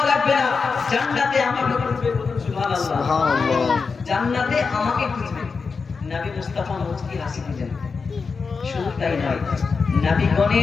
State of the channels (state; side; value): quieter; right; 5.0 dB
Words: লাগবে না, জান্নাতে আমাকে খুঁজবে। বলুন সুবহানাল্লাহ। সুবহানাল্লাহ। জান্নাতে আমাকে খুঁজবে। নবী মুস্তাফা মুচকি হাসি দিলেন। শুধু তাই নয়,